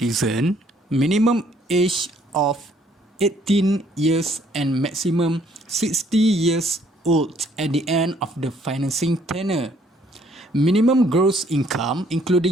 minimum age of 18 years and maximum 60 years old at the end of the financing tenure. Minimum gross income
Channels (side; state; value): both; normal; correlation 0.64